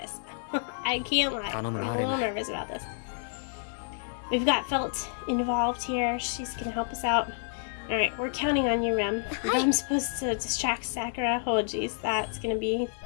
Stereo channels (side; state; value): right; silent; digital silence